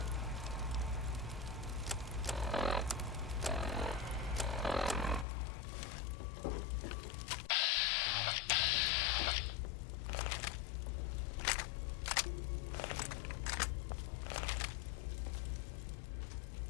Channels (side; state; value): right; drops out; at 5.2 s